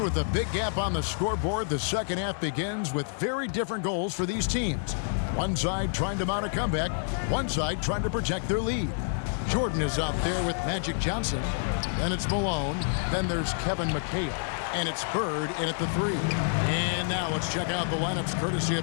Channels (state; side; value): silent; right; digital silence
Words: with a big gap on the scoreboard, the second half begins with very different goals for these teams. One side trying to mount a comeback, one side trying to protect their lead. Jordan is out there with Magic Johnson. Then it's Malone. Then there's Kevin McHale. And it's Bird in at the 3. And now let's check out the lineups courtesy